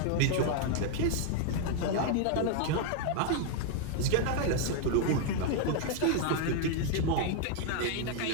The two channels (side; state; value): both; different; correlation 0.00